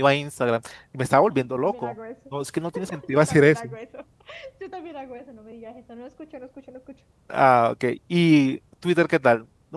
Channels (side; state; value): both; identical; correlation 1.00